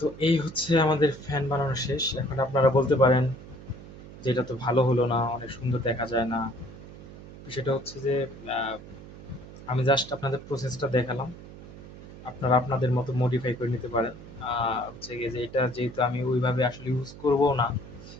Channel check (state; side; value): noise; right; hum, 16 dB below the sound